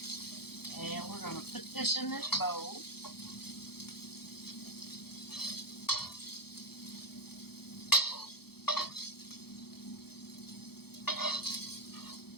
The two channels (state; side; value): late; right; 0.96 ms